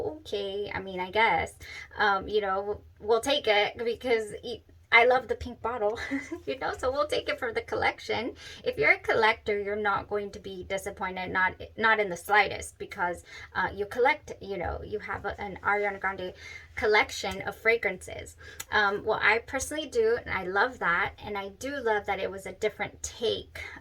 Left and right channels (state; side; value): identical; both; correlation 1.00